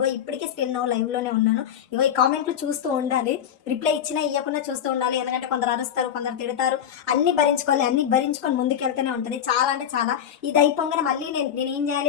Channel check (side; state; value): right; quieter; 9.3 dB